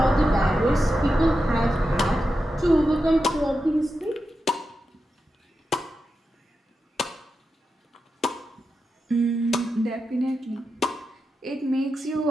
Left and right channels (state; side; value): normal; both; correlation 0.89